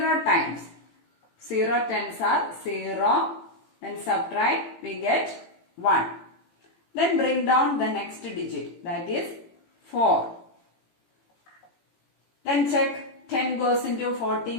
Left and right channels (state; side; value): late; right; 18 ms